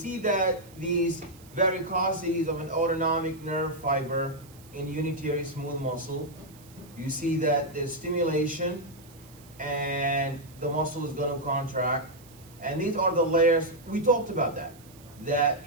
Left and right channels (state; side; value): noise; right; hiss, 24 dB below the sound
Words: that these varicosities of an autonomic nerve fiber in unitary smooth muscle, you see that there's stimulation and the muscle is going to contract. And these are the layers. We talked about that